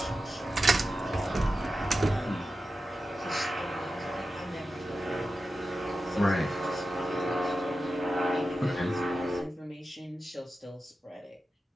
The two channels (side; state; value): both; normal; correlation 0.92